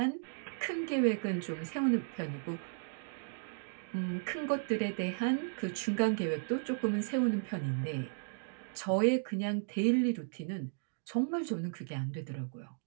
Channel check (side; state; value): left; silent; digital silence